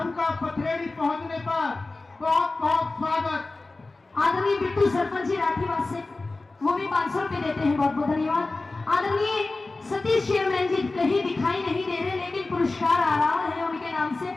पथरेड़ी पहुंचने पर बहुत बहुत स्वागत। आदरणीय बिट्टू सरपंच जी राठीवास से वो भी 500 रुपए देते हैं, बहुत बहुत धन्यवाद। आदरणीय सतीश चेयरमैन जी कहीं दिखाई नहीं दे रहे, लेकिन पुरस्कार आ रहा है उनके नाम से।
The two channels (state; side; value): quieter; right; 3.3 dB